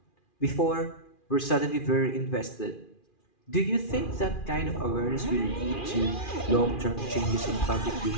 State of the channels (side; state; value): right; late; 2.4 ms